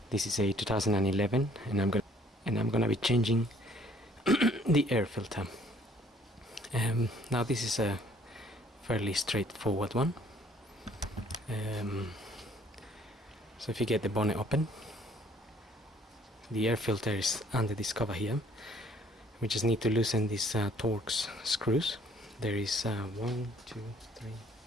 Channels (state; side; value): normal; both; correlation 0.60